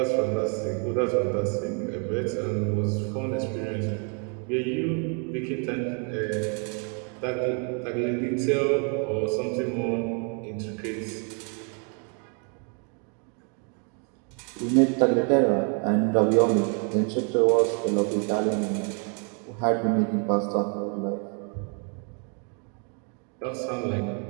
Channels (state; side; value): quieter; left; 38.8 dB